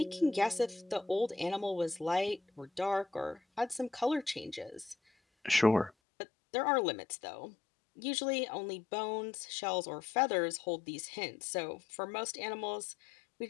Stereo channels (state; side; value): drops out; right; at 5.9 s